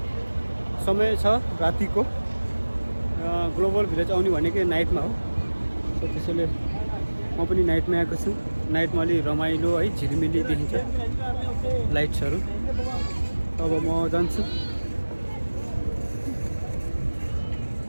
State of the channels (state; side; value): inverted; both; correlation -1.00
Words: समय छ रातिको। ग्लोबल भिलेज आउने भनेकै नाइटमा हो। सो त्यसैले म पनि नाइटमा आएको छु। नाइटमा अलि रमाइलो है, झिलिमिली देखिन्छ लाइट्सहरू। अब म जान्छु।